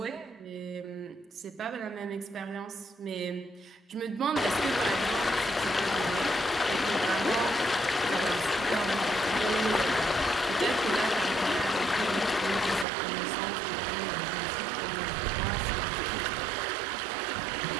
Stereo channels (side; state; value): left; drops out; at 12.9 s